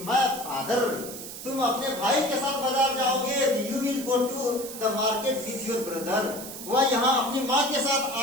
my father, तुम अपने भाई के साथ बाजार जाओगे, you will go to the market with your brother, वह यहाँ अपनी माँ के साथ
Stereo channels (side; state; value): right; noise; hiss, 11 dB below the sound